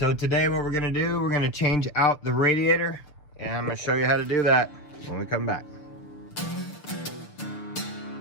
today what we're gonna do, we're gonna change out the radiator, and I'm gonna show you how to do that when we come back.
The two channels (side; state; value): right; late; 6.7 ms